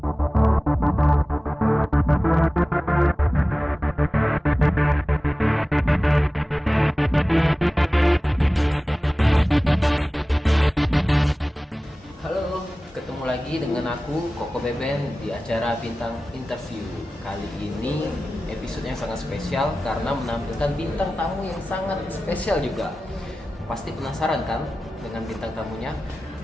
ketemu lagi dengan aku Koko Beben di acara Bintang Interview. Kali ini episode yang sangat spesial karena menampilkan bintang tamu yang sangat spesial juga. Pasti penasaran kan dengan bintang tamunya?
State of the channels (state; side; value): normal; both; correlation 0.96